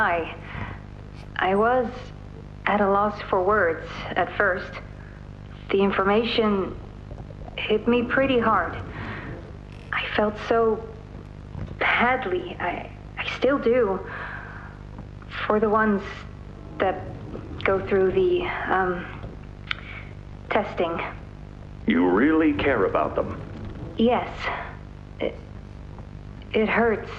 I was at a loss for words at first. The information hit me pretty hard. I felt so badly. I still do. For the ones that go through the, testing. You really care about them? Yes. It hurts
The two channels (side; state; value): both; identical; correlation 1.00